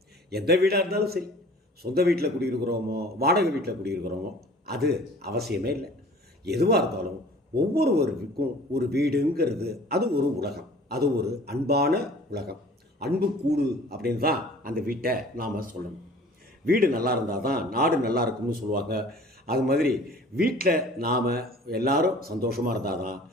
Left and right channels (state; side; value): normal; both; correlation 0.48